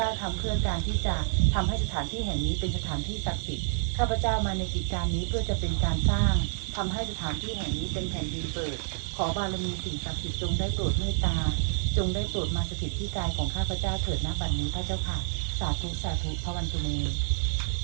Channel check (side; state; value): left; silent; digital silence